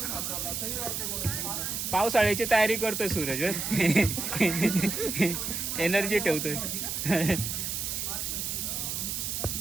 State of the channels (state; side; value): noise; right; hiss, 2 dB below the sound